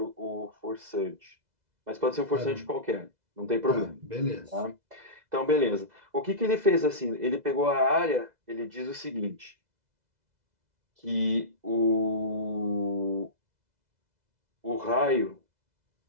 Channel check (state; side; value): late; left; 2.0 ms